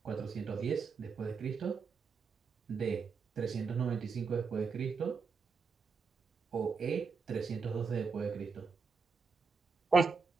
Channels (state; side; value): quieter; left; 5.1 dB